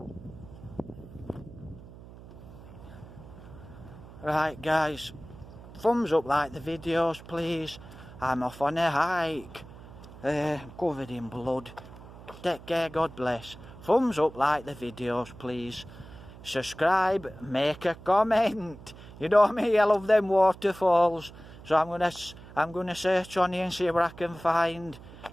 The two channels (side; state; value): right; noise; hum, 17 dB below the sound